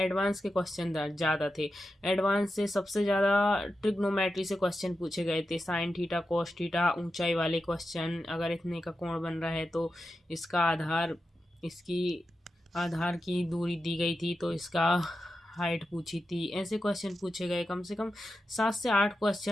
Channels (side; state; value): both; normal; correlation 0.90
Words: के क्वेश्चन ज़्यादा थे। एडवांस से सबसे ज़्यादा ट्रिग्नोमेट्री से क्वेश्चन पूछे गए थे, साइन थीटा कोस थीटा, ऊंचाई वाले क्वेश्चन। अगर इतने का कोण बन रहा है तो इसका आधार की दूरी दी गई थी तो इसका हाइट पूछी थी। ऐसे क्वेश्चन पूछे गए। कम से कम 7 से 8